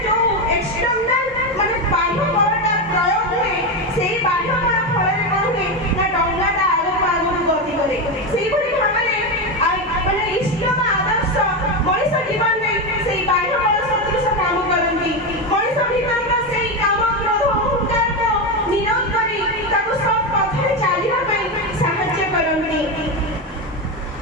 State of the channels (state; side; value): normal; both; correlation 0.13